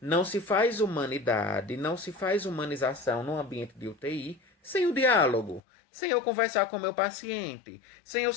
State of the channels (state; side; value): drops out; right; at 5.6 s